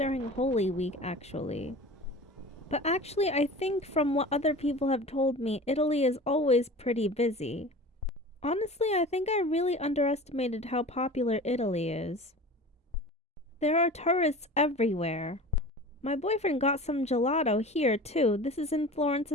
Holy Week, actually. But actually, I think from what other people have told me, Italy is always pretty busy. Honestly, I think I really underestimated how popular Italy is. There are tourists everywhere. My boyfriend got some gelato here too. This is in Florence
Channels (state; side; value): normal; both; correlation 0.37